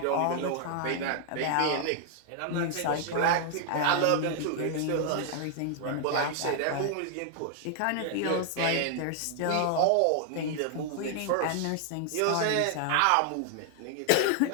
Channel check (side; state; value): both; different; correlation 0.00